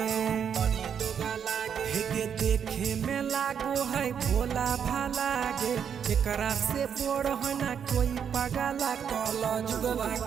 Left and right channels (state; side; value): quieter; left; 7.8 dB